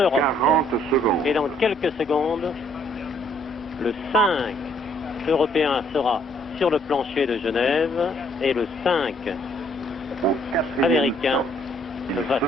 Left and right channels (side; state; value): both; normal; correlation 0.65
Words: Et dans quelques secondes, le 5 européen sera sur le plancher de Genève et le 5 américain va se